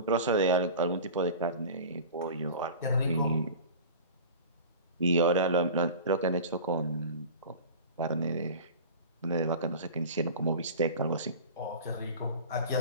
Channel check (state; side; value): inverted; both; correlation -0.36